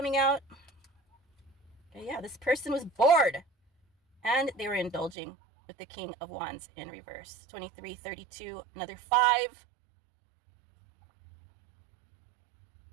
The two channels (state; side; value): drops out; left; at 5.2 s